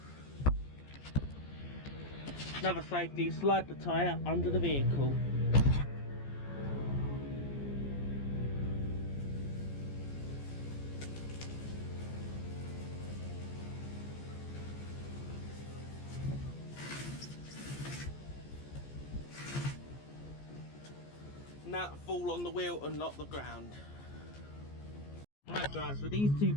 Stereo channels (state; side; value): late; right; 14 ms